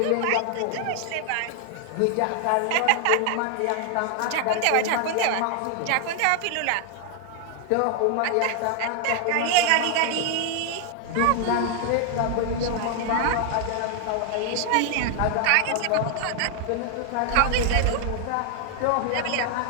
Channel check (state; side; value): different; both; correlation 0.00